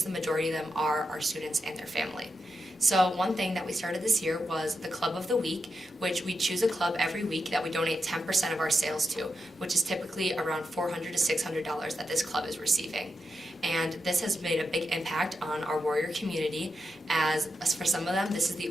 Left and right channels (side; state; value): both; normal; correlation 0.87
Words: the majority of them are our students and their family. So one thing that we started this year was the Club of the Week, which we choose a club every week that we donate 10% of our sales to, which is typically around $400 to $600 that this club is receiving. And this has made a big impact on our Warrior community, as for some of them, this is the